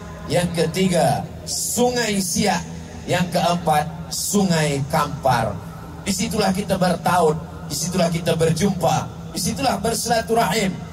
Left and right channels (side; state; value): both; identical; correlation 1.00